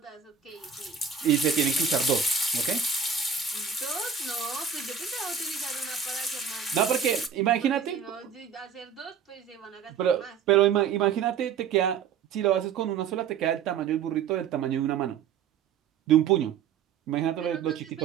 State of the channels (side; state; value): left; quieter; 7.0 dB